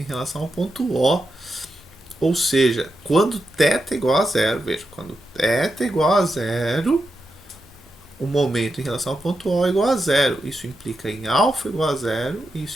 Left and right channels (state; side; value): normal; both; correlation 0.87